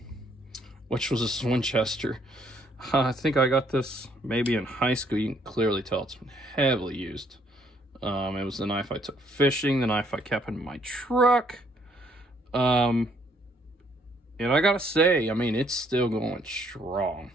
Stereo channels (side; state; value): both; normal; correlation 0.67